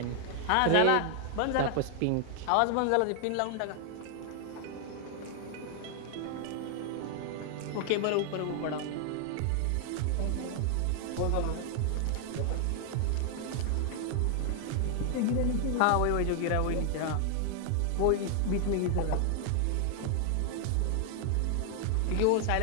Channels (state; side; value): different; both; correlation 0.00